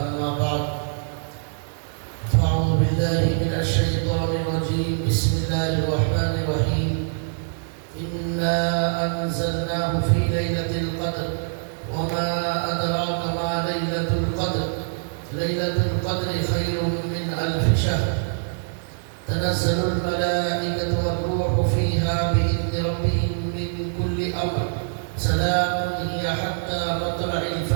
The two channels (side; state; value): left; silent; digital silence